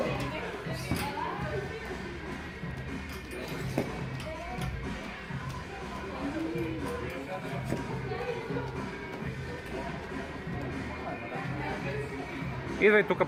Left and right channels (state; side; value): identical; both; correlation 1.00